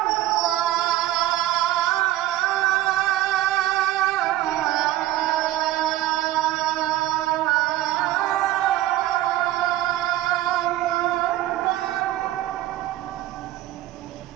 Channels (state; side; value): quieter; left; 14.8 dB